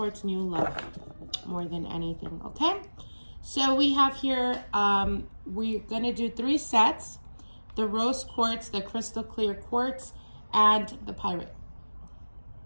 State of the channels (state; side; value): inverted; both; correlation -1.00